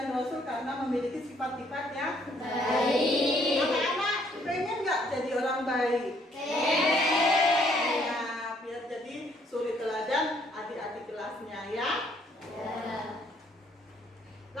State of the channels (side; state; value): both; normal; correlation 0.66